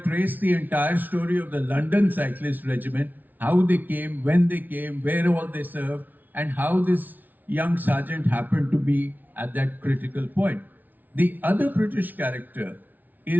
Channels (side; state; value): left; late; 0.082 ms